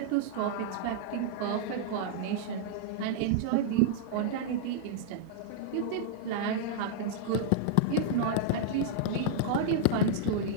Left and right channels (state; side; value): different; both; correlation -0.02